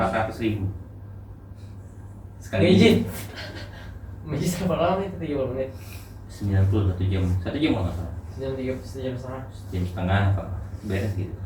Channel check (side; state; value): both; identical; correlation 1.00